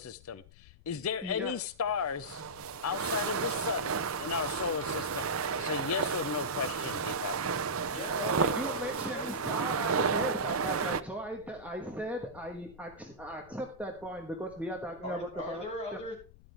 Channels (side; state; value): left; noise; rumble, 22 dB below the sound